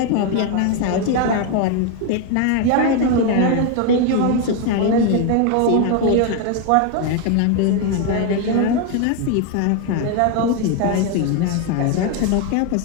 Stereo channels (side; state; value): both; different; correlation 0.01